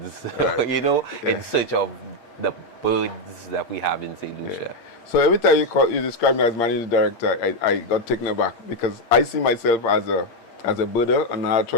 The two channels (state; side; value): late; right; 8.6 ms